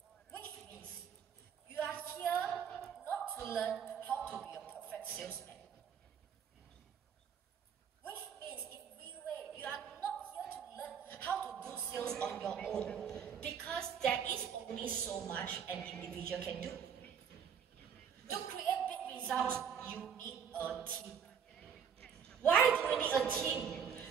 Which means, you are here not to learn how to be a perfect salesman. Which means, in re-weight, you are not here to learn how to do sales on your own. Because there is only so much an individual can do. To create big results, you need a team. Why do we need a team?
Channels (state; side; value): quieter; left; 7.5 dB